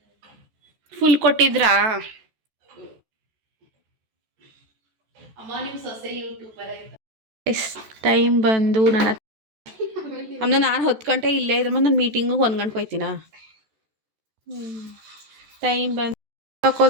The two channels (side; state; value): left; late; 14 ms